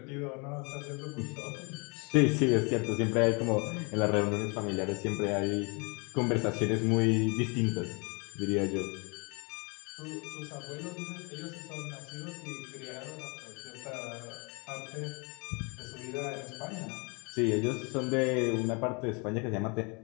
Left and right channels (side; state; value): right; quieter; 31.6 dB